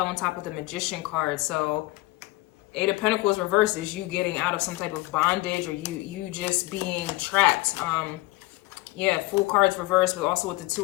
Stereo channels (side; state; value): right; quieter; 20.8 dB